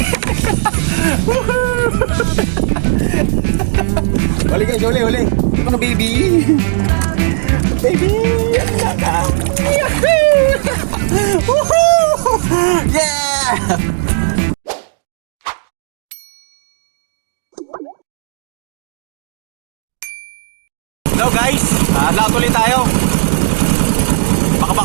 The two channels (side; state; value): left; silent; digital silence